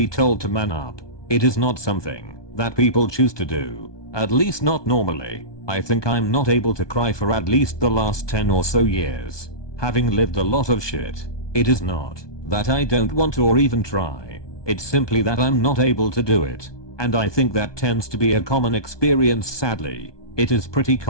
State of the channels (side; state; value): right; late; 1.2 ms